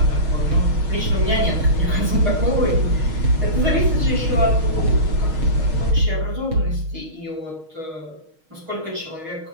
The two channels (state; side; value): late; left; 6.4 ms